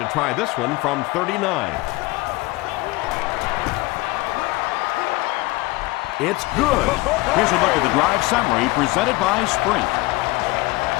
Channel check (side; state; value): right; quieter; 21.3 dB